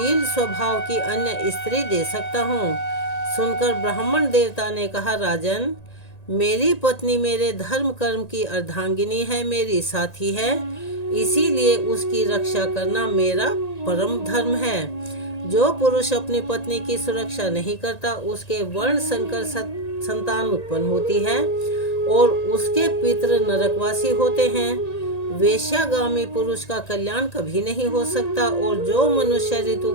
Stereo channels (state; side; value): late; right; 1.9 ms